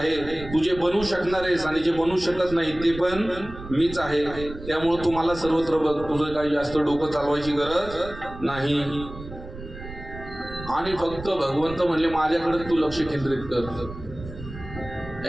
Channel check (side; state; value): right; noise; rumble, 13 dB below the sound